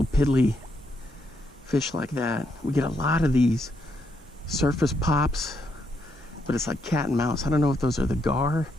piddly fish like that. We get a lot of these surface pops, but it's like cat and mouse. I don't know if those are the gar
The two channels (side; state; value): both; normal; correlation 0.77